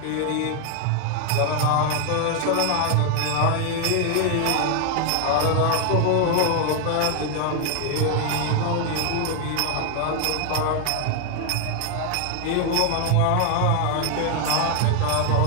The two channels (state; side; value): different; both; correlation 0.00